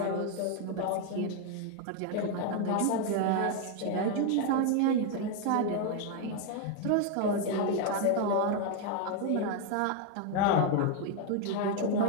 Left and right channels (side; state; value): both; different; correlation 0.01